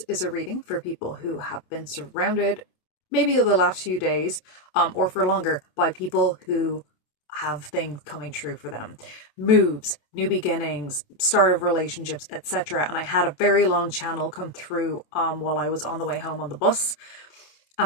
is a reading for people who have been surrounded, maybe the last few days, or for longer, by people who have things coming true for them. Moves, new beginnings, start of relationships, etc. And I had a very long channel come through while I was on the way home on the bus.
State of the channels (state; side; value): late; right; 27 ms